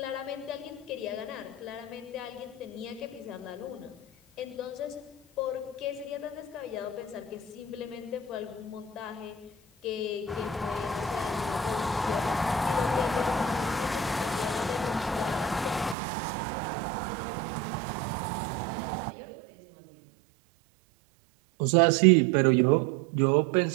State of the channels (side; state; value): left; drops out; at 16.0 s